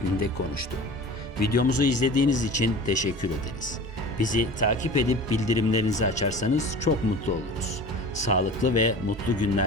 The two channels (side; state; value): both; normal; correlation 0.38